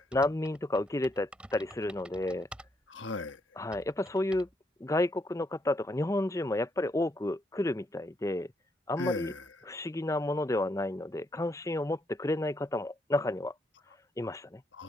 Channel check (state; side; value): normal; both; correlation 0.76